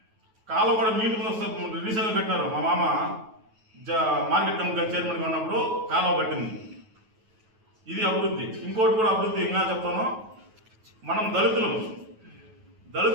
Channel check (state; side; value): late; left; 9.2 ms